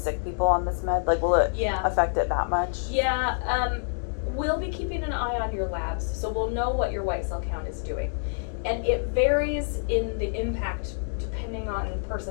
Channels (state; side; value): silent; right; digital silence